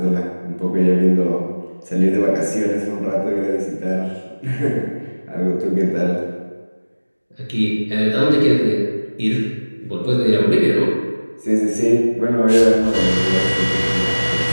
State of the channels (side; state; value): both; inverted; correlation -1.00